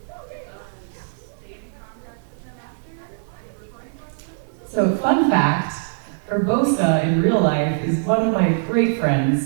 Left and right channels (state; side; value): silent; left; digital silence